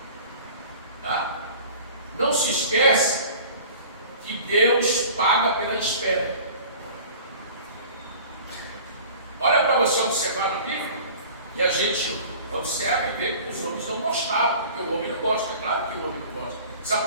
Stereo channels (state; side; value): inverted; both; correlation -0.43